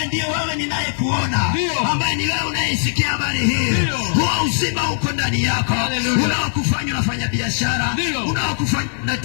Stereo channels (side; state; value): right; silent; digital silence